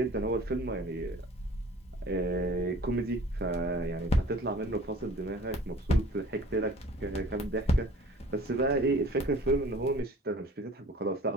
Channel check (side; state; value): both; normal; correlation 0.48